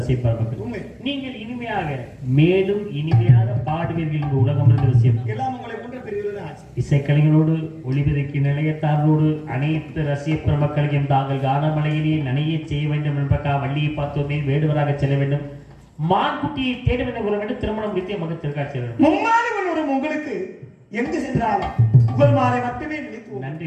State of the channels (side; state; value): both; identical; correlation 1.00